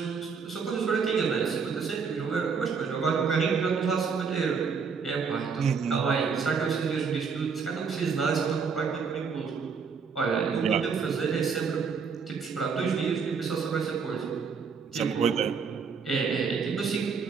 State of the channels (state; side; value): quieter; left; 5.7 dB